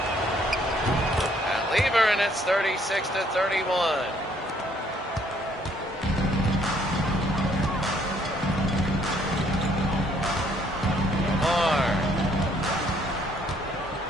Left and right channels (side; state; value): both; normal; correlation 0.65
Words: Pat Lever, and it's 36-31.